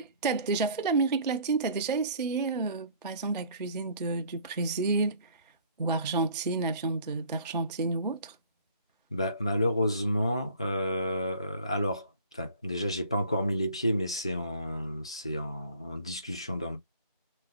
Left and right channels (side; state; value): both; inverted; correlation -0.53